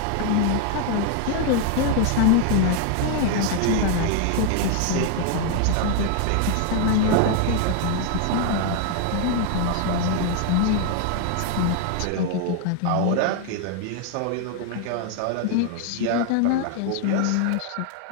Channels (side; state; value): both; different; correlation 0.00